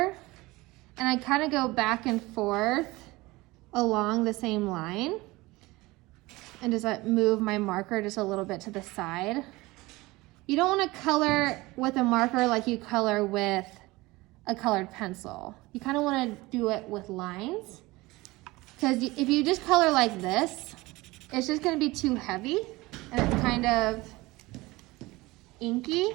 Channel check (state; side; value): quieter; left; 21.0 dB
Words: and I kind of go back and forth along the same line. and just move my marker just a little bit to the side. You don't want to color with a marker like you color with a colored pencil. You kind of want to do it with lines, because if you just color like this, it's just going to be too heavy and it's kind of inky.